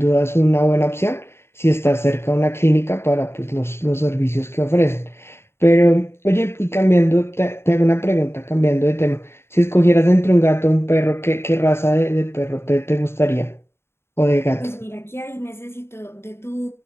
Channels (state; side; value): late; right; 0.12 ms